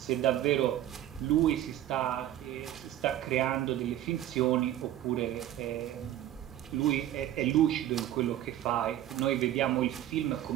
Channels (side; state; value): left; quieter; 12.6 dB